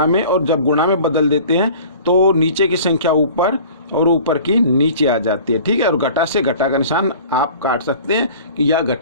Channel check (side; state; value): both; inverted; correlation -0.45